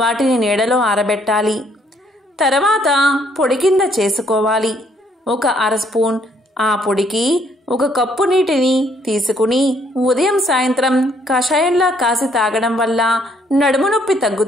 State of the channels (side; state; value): both; normal; correlation 0.67